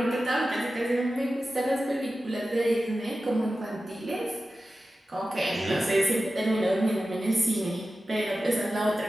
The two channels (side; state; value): both; normal; correlation 0.93